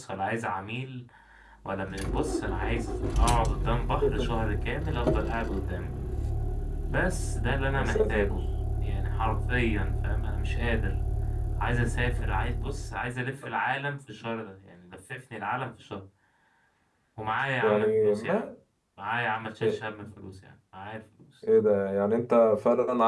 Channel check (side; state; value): both; identical; correlation 1.00